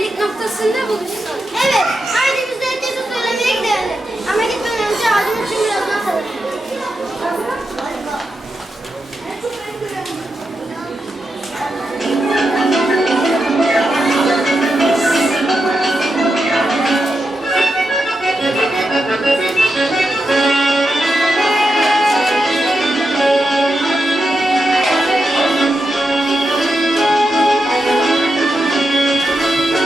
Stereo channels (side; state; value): both; normal; correlation 0.87